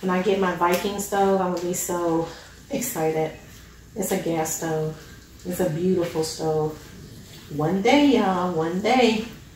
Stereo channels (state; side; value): identical; both; correlation 1.00